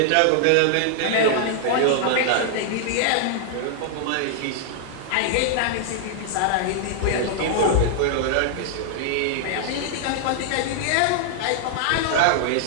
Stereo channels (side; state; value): both; different; correlation -0.01